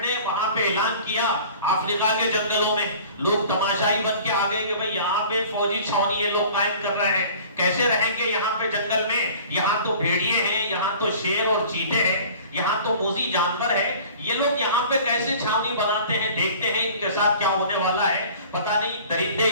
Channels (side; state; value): both; inverted; correlation -0.46